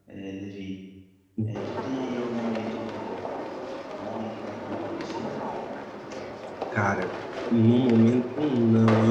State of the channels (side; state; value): both; identical; correlation 1.00